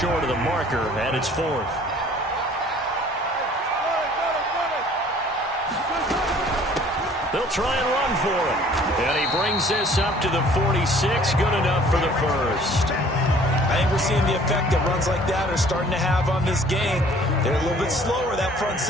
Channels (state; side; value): normal; both; correlation 0.54